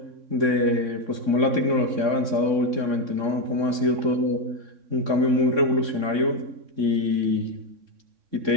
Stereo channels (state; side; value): late; left; 3.6 ms